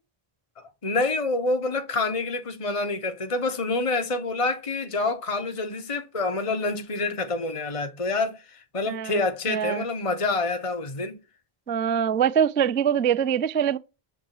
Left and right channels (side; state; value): right; late; 1.5 ms